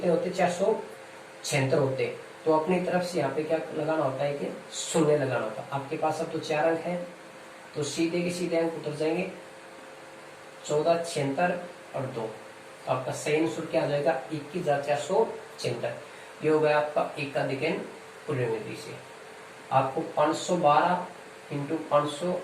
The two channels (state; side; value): identical; both; correlation 1.00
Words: होते, 476 होते। तो अपनी तरफ से यहाँ पे क्या लगाना होता है कि शून्य लगाना होता है। आपके पास अब तो 4 अंक है तो सीधे के सीधे अंक उतर जाएंगे, 14 76 और 2। तो आपका सही आंसर क्या आ जाएगा, 21,476। ये हो गया आपका एकाधिकन पूर्वेण विधि से। आपको 512 इंटू